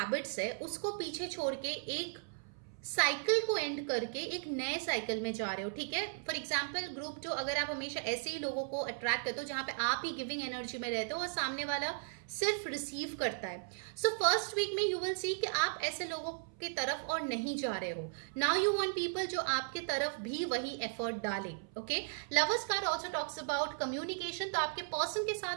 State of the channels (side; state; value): left; silent; 54 dB below the other